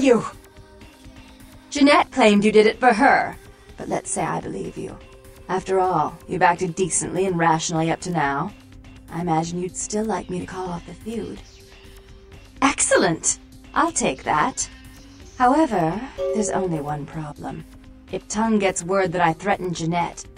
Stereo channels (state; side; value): identical; both; correlation 1.00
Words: Jeanette claimed you did it for her, but let's say I believe you. After all, you've acted decently and rationally up to now. I imagine you'd still like me to call off the feud. Excellent! I'll take that. However, there's only one problem. If Tongue gets word that I threatened Jeanette,